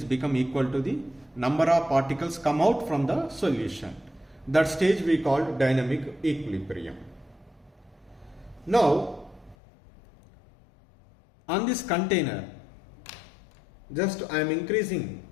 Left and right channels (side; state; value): right; drops out; at 9.6 s